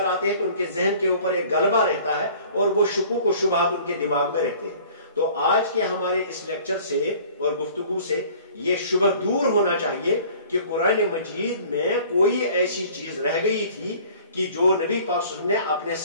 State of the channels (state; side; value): inverted; both; correlation -0.50